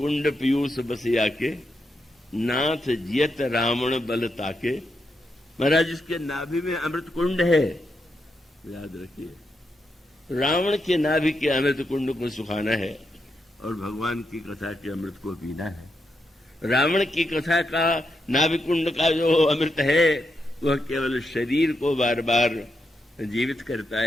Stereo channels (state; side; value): normal; both; correlation 0.83